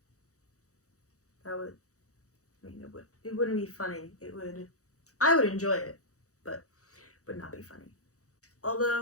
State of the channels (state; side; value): late; right; 0.65 ms